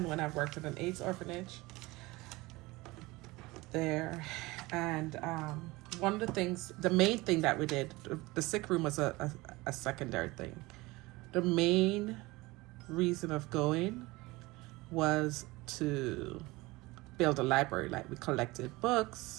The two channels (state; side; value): quieter; left; 21.5 dB